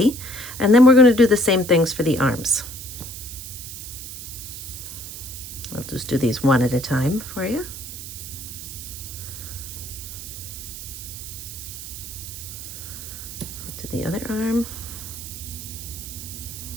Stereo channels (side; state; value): right; noise; hiss, 10 dB below the sound